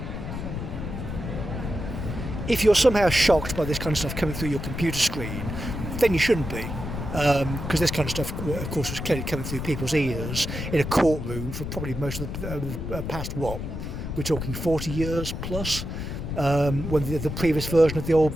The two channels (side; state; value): left; noise; rumble, 5 dB below the sound